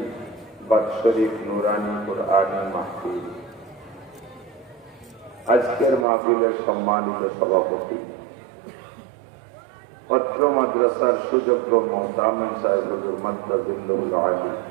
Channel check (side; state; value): left; drops out; at 6.1 s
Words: বাৎসরিক নুরানি কুরআনী মাহফিল। আজকের মাহফিলের সম্মানিত সভাপতি পত্র মাদ্রাসার সুযোগ্য মোহতামিম সাহেবুল মাদ্রাজুল্লাহুল আলী